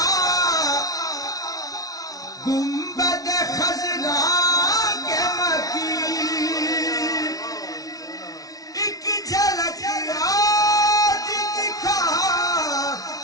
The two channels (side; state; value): right; late; 0.18 ms